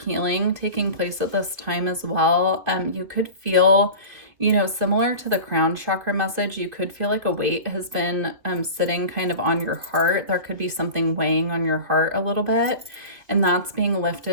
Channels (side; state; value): left; late; 2.8 ms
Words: healing taking place at this time as well. You could feel, you know, similar to the crown chakra message, you could feel like a weight has been sitting kind of on your heart. There could be something weighing on your heart a little bit, and that's being